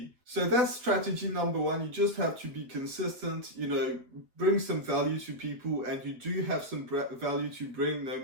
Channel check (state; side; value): late; left; 7.9 ms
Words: So that's strategy number one. You just have to be consistent, you know, bring some value to people, and you do have some value to bring, no